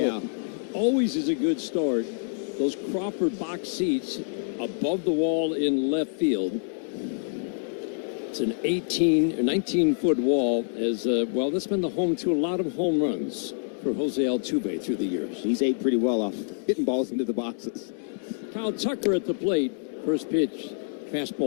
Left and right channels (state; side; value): silent; right; digital silence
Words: out, always is a good start. Those Crawford box seats above the wall in left field. It's an 18 or 19-foot wall. That's been the home to a lot of home runs for Jose Altuve through the years. He's ate pretty well off hitting balls into the boxes. Kyle Tucker at the plate. First pitch.